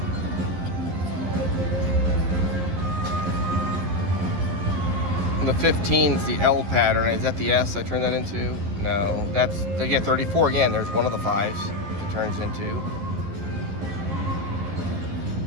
And the 15 is the L pattern. Is that the S I turned that into? No, that's, again, 34 again. There's one of the 5s it turns into.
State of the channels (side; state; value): left; late; 11 ms